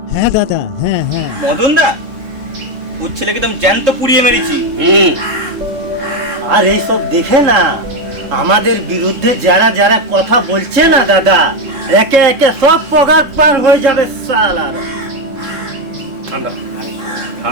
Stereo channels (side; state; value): left; late; 3.7 ms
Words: হ্যাঁ দাদা, হ্যাঁ হ্যাঁ। মদন দা ওর ছেলেকে তো আমি জ্যান্ত পুড়িয়ে মেরেছি। আর এইসব দেখে না আমাদের বিরুদ্ধে যারা যারা কথা বলছে না দাদা, একে একে সব পগার পার হয়ে যাবে সালার। ঠান্ডা